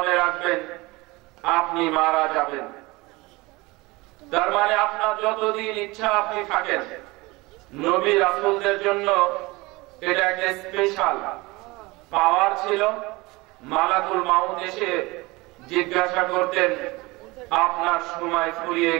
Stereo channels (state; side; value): quieter; left; 22.8 dB